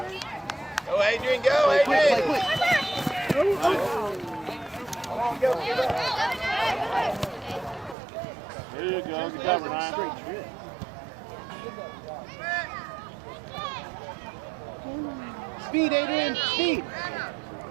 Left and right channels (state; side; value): drops out; left; at 8.0 s